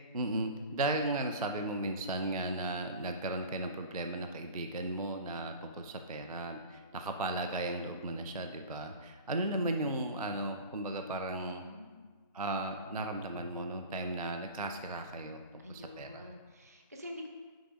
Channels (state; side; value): inverted; both; correlation -0.37